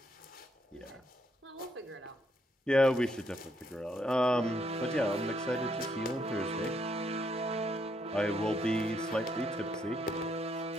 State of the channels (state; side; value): normal; both; correlation 0.74